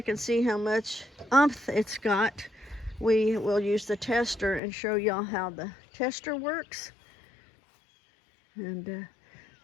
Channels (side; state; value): right; drops out; at 4.6 s